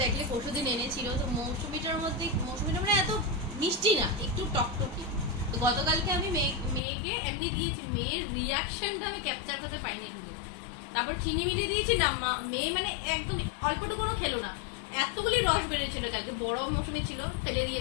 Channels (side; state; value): right; drops out; at 6.8 s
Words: দেখলে পরশুদিন এনেছিল। তো মৌসুমিটা মানে এত মিষ্টি না, একটু টকটকি। তো গতকালকে আমি মেয়েকে এমনি দিয়েছি, মেয়ের রিয়াকশনটা আমি ক্যাপচার করতে পাইনি কিন্তু। তারপর চিনি মিলিয়ে দিয়েছি না, মেয়ে মানে একদম অল্পটুকুনো খেলো না, এতগুলি রস বেরিয়েছিল। কালকে বড় মৌসুমি ছিল, ফেলে